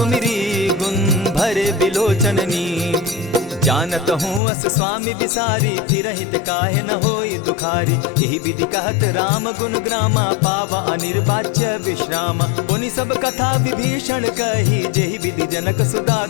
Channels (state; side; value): drops out; right; at 4.4 s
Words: गुण भरे बिलोचन नीर। जानत हूँ अस स्वामी बिसारी, फिरहित काहे न होई दुखारी। यही विधि कहत राम गुण ग्रामा, पावा अनिर्वाच्य विश्रामा। पुनि सब कथा विभीषण कही, जेहि विधि जनक सुता